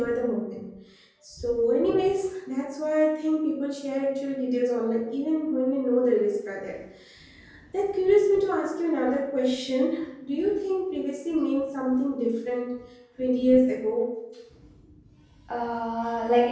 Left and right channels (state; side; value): identical; both; correlation 1.00